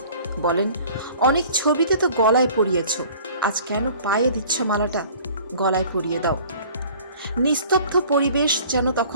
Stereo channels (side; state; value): both; inverted; correlation -0.49